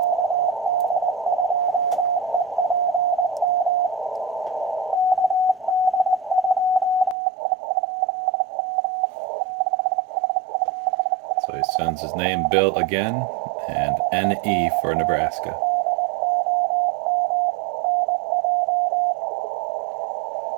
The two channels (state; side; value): drops out; left; at 7.2 s